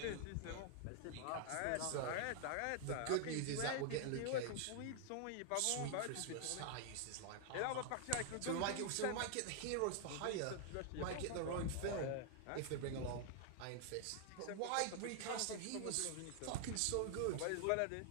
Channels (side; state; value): both; different; correlation 0.00